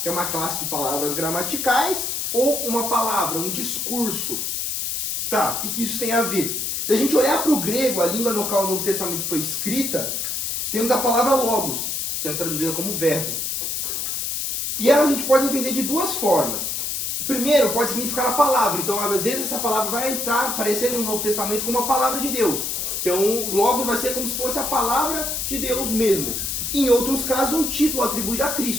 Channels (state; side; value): noise; left; hiss, 2 dB below the sound